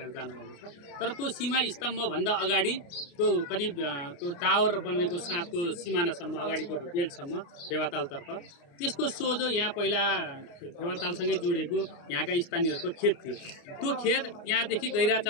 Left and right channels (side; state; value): right; late; 29 ms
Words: जानुभएको छ। तर त्यो सीमा स्तम्भभन्दा अगाडि त्यो करिब त्यो टावर बनेको साथको सिमानासम्म अगाडिको बेल्टसम्म फेवातालतर्फ, त्यसको सोझो यहाँ पहिला फेवातालसँगै जोडिएको यहाँका स्थानीयहरूको खेत थियो। त्यो खेत यहाँदेखि गैरा